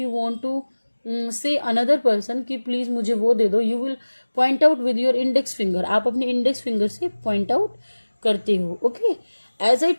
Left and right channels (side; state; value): both; inverted; correlation -1.00